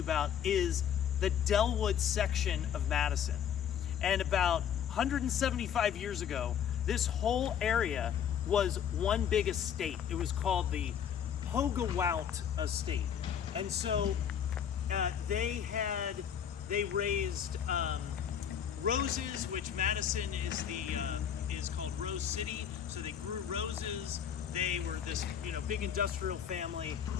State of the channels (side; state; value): right; quieter; 8.7 dB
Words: about is the Dellwood section of Madison. And about 175 years ago, this whole area was one big estate. It was called the Houghmont Estate. And so they raised roses, which Madison is called Rose City. So they grew roses. They were this big industrial family.